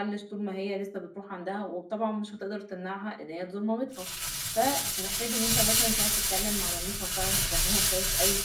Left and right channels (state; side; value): identical; both; correlation 1.00